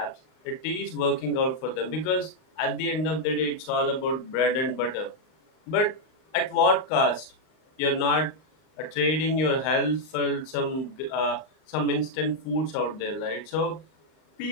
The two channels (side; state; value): right; late; 38 ms